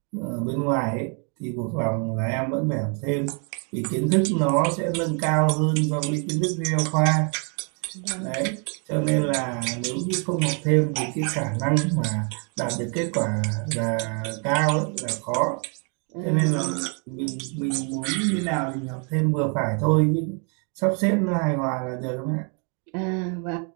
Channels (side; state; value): left; quieter; 38.8 dB